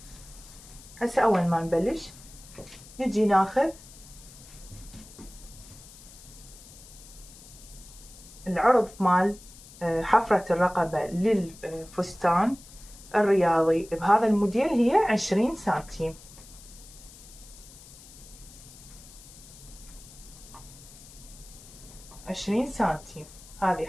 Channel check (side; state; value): left; noise; hiss, 19 dB below the sound